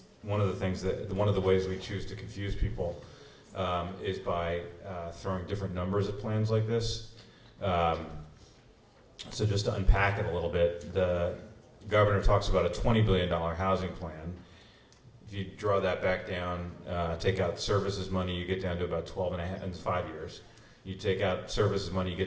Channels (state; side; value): identical; both; correlation 1.00